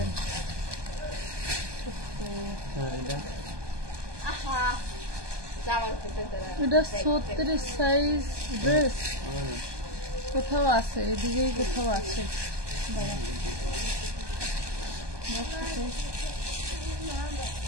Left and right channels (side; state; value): left; late; 1.2 ms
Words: এটা 36 সাইজ ড্রেস, কোথাও আছে, এদিকেই কোথাও আছে।